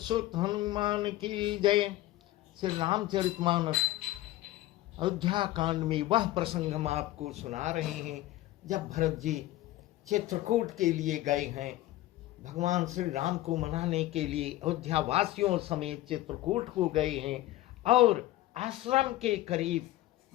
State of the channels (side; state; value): right; quieter; 15.8 dB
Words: हनुमान की जय। श्री रामचरितमानस अयोध्या कांड में वह प्रसंग हम आपको सुना रहे हैं जब भरत जी चित्रकूट के लिए गए हैं। भगवान श्री राम को मनाने के लिए अयोध्या वासियों समेत चित्रकूट को गए हैं और आश्रम के करीब